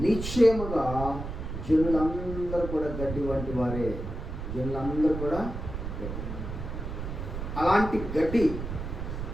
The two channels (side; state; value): right; noise; rumble, 6 dB below the sound